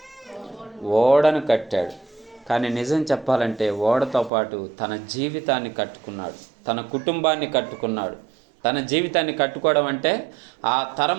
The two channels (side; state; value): left; drops out; at 4.3 s